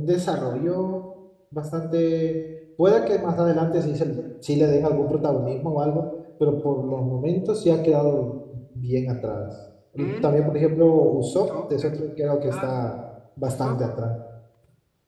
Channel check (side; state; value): both; identical; correlation 1.00